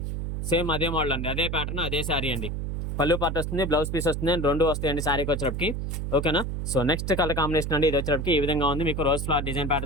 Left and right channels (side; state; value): right; noise; hum, 3 dB below the sound